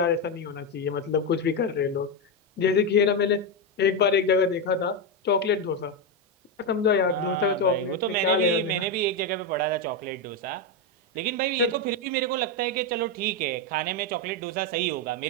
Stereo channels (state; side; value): normal; both; correlation 0.07